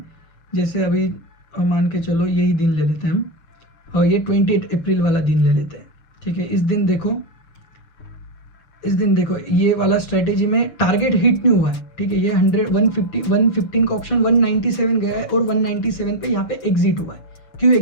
जैसे अभी मान के चलो यही दिन ले लेते हैं हम, और ये 28 अप्रैल वाला दिन ले लेते हैं, ठीक है। इस दिन देखो ये वाला स्ट्रेटेजी में टारगेट हिट नहीं हुआ है, ठीक है। ये 115 का ऑप्शन 197 गया है, और 197 पे यहाँ पे एग्जिट हुआ है। क्यों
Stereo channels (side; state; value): right; late; 6.8 ms